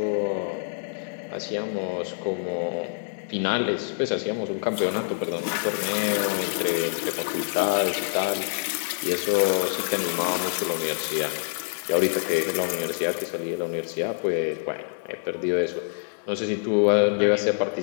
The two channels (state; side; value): silent; right; digital silence